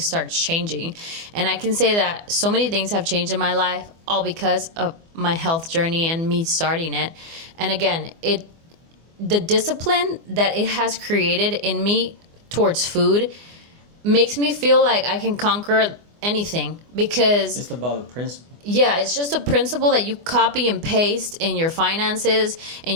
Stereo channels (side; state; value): left; late; 24 ms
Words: starts changing. And I can say that so many things have changed in my life, all because of my health journey and me starting it. And again, the discipline that it has created in me towards food makes me feel like I can conquer anything, because It's about the principle. yeah, it's just a principle that you copy and paste in your finances,